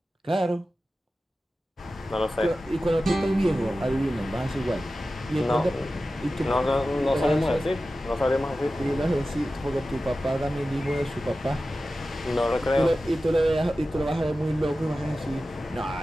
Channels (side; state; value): both; normal; correlation 0.94